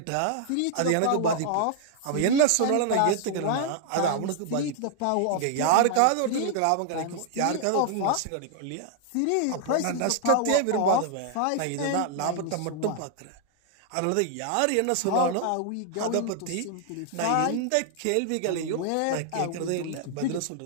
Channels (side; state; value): both; different; correlation -0.01